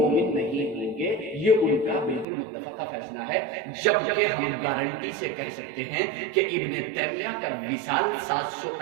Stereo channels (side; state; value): left; drops out; at 2.2 s